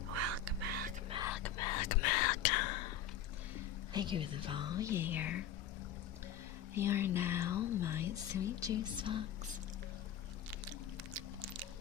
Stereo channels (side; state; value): right; quieter; 9.2 dB